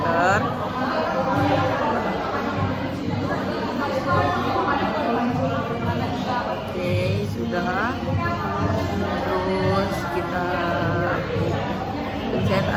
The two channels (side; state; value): both; identical; correlation 1.00